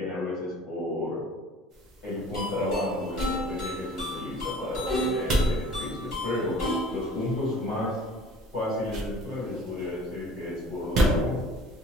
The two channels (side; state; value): both; normal; correlation 0.48